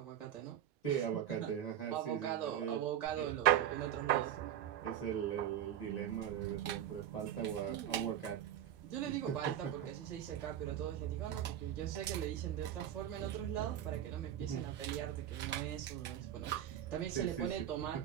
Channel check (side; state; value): left; quieter; 10.7 dB